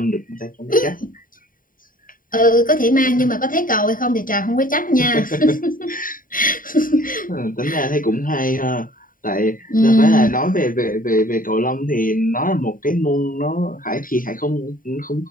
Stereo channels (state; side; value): late; right; 0.40 ms